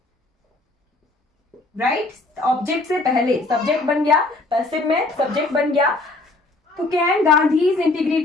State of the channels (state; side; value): quieter; right; 3.0 dB